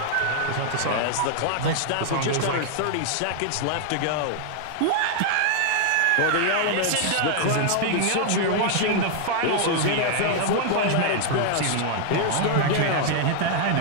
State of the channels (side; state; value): both; different; correlation -0.01